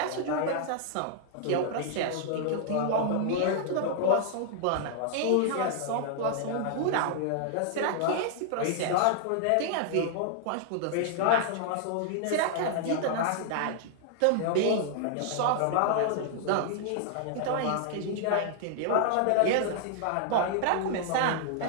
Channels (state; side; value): different; both; correlation -0.01